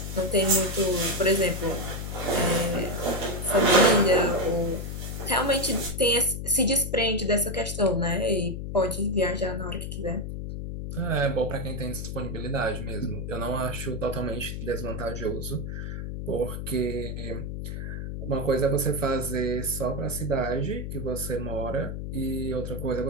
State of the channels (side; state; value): left; noise; hum, 5 dB below the sound